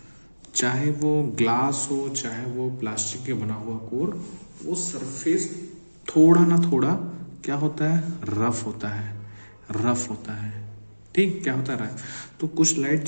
चाहे वो ग्लास हो चाहे वो प्लास्टिक के बना हुआ कोर, वो सरफेस थोड़ा ना थोड़ा क्या होता है, रफ होता है। ठीक, क्या होता है, तो कुछ लाइट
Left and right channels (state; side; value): inverted; both; correlation -1.00